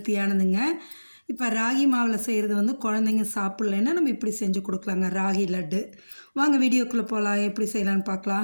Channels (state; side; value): inverted; both; correlation -1.00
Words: இப்போ ராகி மாவில் செய்கிறது வந்து குழந்தைங்க சாப்பிட்லன்னா நம்ம இப்படி செஞ்சு கொடுக்கலாங்க, ராகி லட்டு. வாங்க வீடியோக்குள்ளே போகலாம், எப்படி செய்யலான்னு